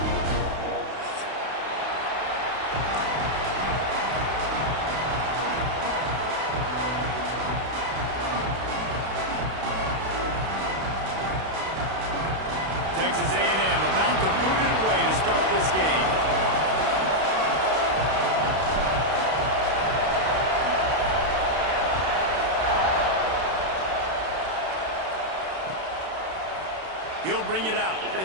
Texas A&M about to boot it away to start this game. He'll bring it out.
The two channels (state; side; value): late; left; 32 ms